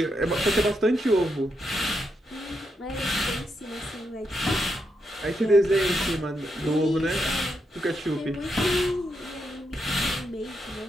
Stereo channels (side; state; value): both; normal; correlation 0.82